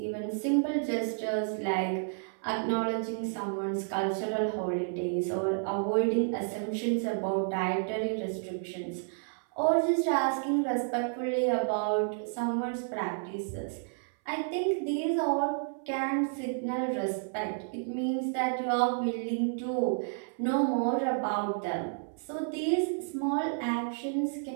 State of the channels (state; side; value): silent; left; 57 dB below the other